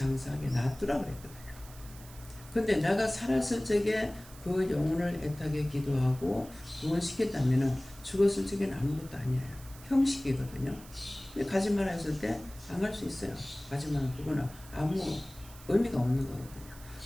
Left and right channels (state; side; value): noise; right; hiss, 19 dB below the sound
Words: 놔두라 그랬거든요. 근데 내가 살았을 적에 그 영혼을 애타게 기도하고 구원시켰다면 죽었을 적에는 아무것도 아니에요. 형식이거든요. 근데 가지 마라 했을 때 안 갈 수 있어요. 가지 마라, 그거는 아무 의미가 없는 거거든요.